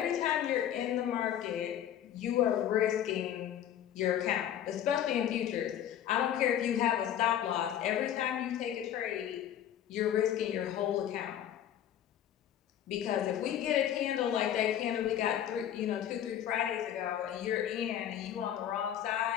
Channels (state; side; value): quieter; right; 10.6 dB